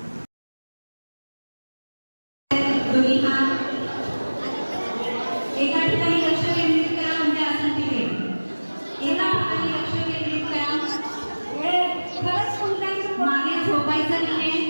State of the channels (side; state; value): both; inverted; correlation -1.00